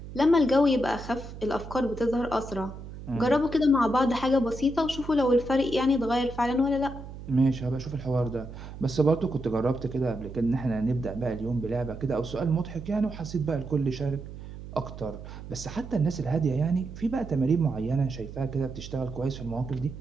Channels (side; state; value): right; noise; hum, 12 dB below the sound